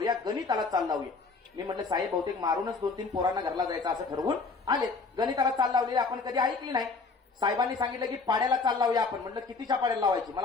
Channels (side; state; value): right; quieter; 4.3 dB